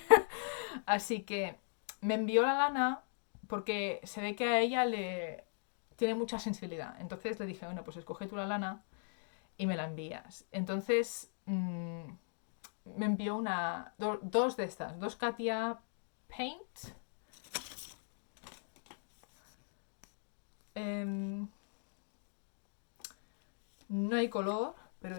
Así que me envió la lana porque se ve que a ella le tiene mucha sensibilidad. Entonces le dije, bueno, pues escoge tú la lana y me la envías. Entonces me envió dos de estas, dos Katia Paint. No hay color, pero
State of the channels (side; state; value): right; silent; digital silence